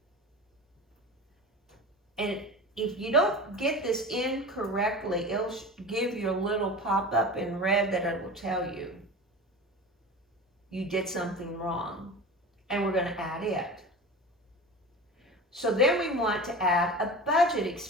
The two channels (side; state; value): both; normal; correlation 0.32